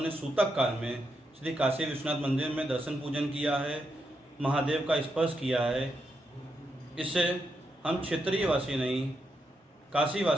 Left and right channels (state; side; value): normal; both; correlation 0.83